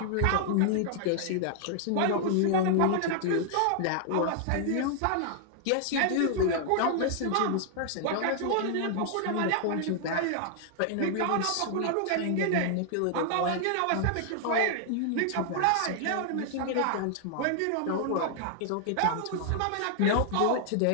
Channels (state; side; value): different; both; correlation 0.00